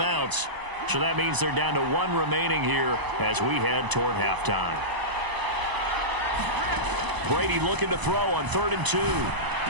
So that means they're down to 1 remaining here as we head toward halftime. Brady looking to throw on 3rd and 2.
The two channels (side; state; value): left; late; 1.0 ms